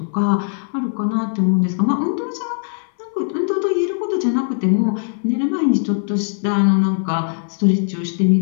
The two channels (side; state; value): right; silent; 61 dB below the other